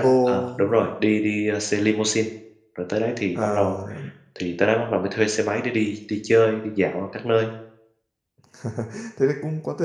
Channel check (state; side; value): identical; both; correlation 1.00